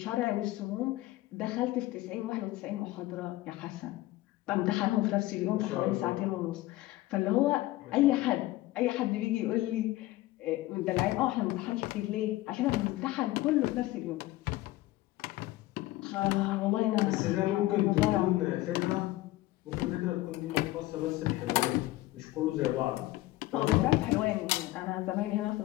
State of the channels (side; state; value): right; quieter; 17.7 dB